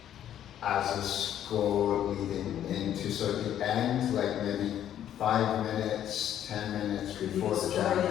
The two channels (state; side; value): quieter; right; 10.8 dB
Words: as a score leading into sort of the end, like maybe 5 minutes, 10 minutes before the jam